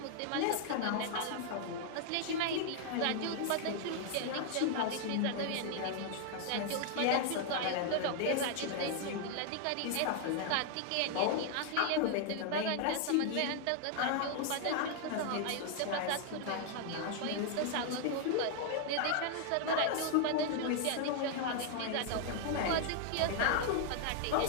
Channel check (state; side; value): different; both; correlation 0.00